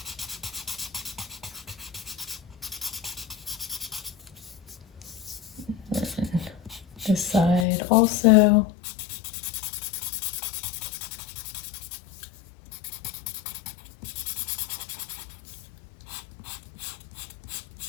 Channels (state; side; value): drops out; right; at 7.7 s